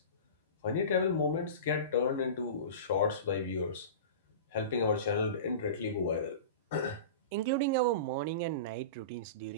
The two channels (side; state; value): both; inverted; correlation -0.32